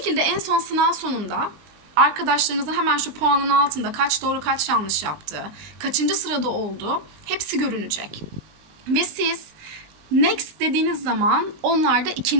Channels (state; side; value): late; left; 20 ms